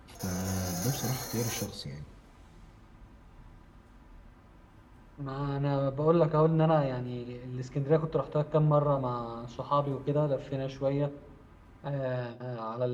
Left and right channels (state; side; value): identical; both; correlation 1.00